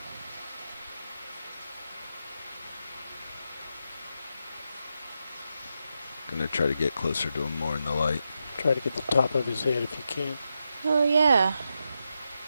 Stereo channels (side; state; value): both; inverted; correlation -0.86